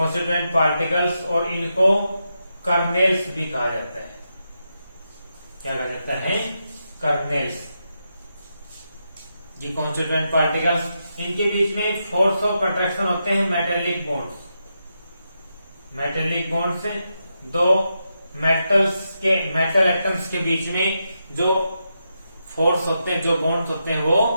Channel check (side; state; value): both; inverted; correlation -0.85